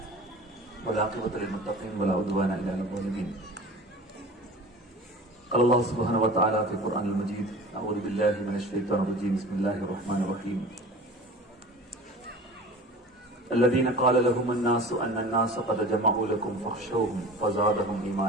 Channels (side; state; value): both; normal; correlation 0.39